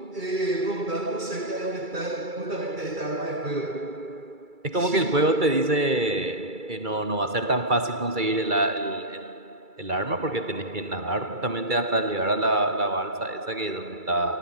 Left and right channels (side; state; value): left; late; 2.3 ms